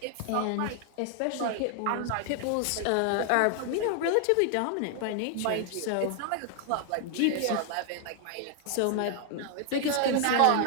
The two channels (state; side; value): different; both; correlation 0.00